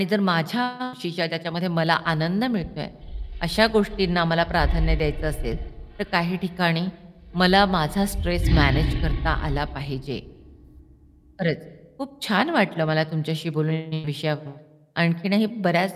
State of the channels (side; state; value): both; identical; correlation 1.00